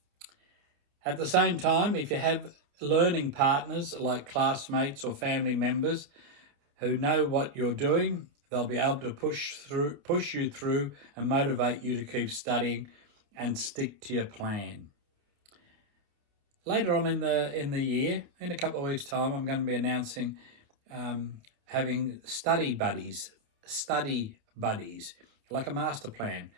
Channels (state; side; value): late; left; 29 ms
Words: At the same time, if you have learning partners like classmates or family members who know what you're doing, they'll be able to push you through and motivate you to keep studying and stick to your plan. Later on in the year, in a couple of weeks' time, I'm going to be announcing having study buddies, like a master plan,